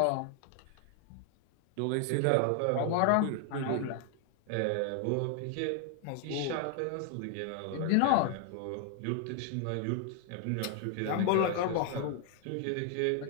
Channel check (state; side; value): different; both; correlation 0.00